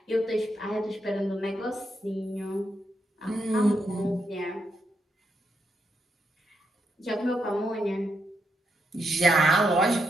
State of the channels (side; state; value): both; normal; correlation 0.81